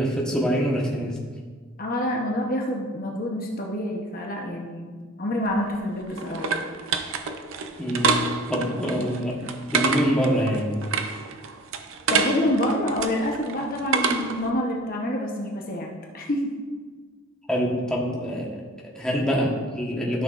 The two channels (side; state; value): both; normal; correlation 0.44